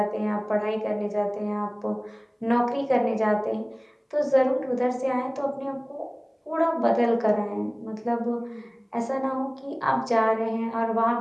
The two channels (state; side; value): identical; both; correlation 1.00